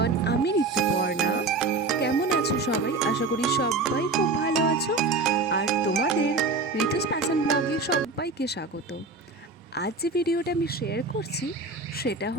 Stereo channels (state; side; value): quieter; left; 3.7 dB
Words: আমি ঋতুপর্ণা। কেমন আছো সবাই? আশা করি সবাই খুব ভালো আছো। আর তোমাদের ঋতুস প্যাশন ব্লগে সবাইকে স্বাগত। আজ যে ভিডিওটা আমি শেয়ার করছি সেটা